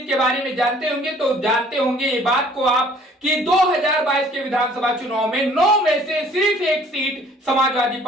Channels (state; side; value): normal; both; correlation 0.55